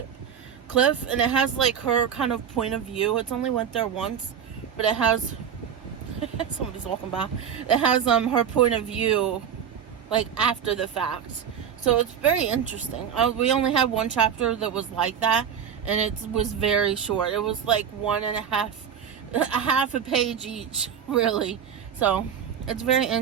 and it has like her kind of point of view. It's only went there once, but it has somebody's walking by. It has her point of view like after the fact. So it's very interesting. We only had one chapter that was like that, and it was very short. It was like half a page each, really. So it's very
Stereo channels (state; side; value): quieter; left; 8.2 dB